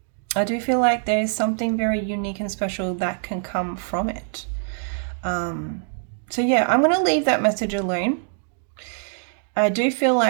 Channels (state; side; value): silent; left; digital silence